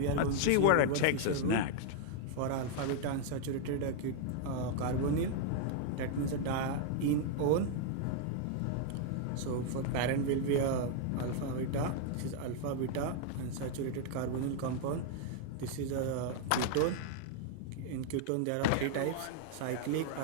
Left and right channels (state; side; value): different; both; correlation 0.00